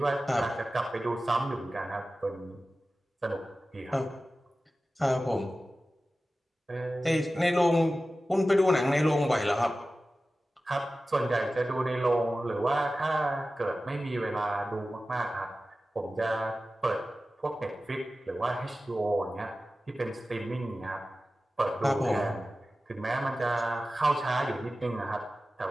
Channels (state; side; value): normal; both; correlation 0.95